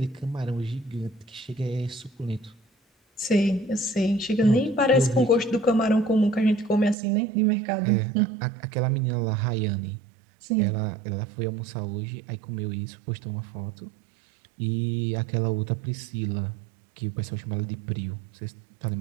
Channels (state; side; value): drops out; left; at 7.0 s